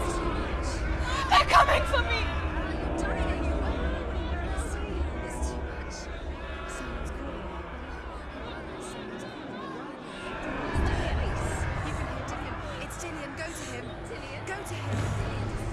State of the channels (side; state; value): both; identical; correlation 1.00